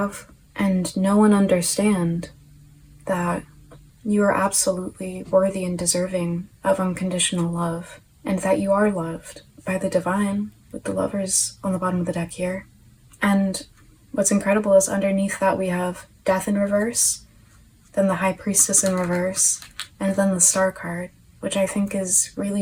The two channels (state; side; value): identical; both; correlation 1.00